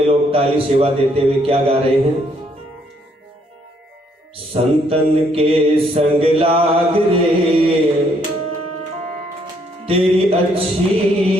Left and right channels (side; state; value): both; normal; correlation 0.69